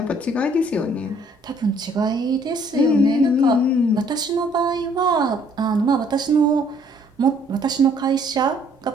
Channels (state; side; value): normal; both; correlation 0.62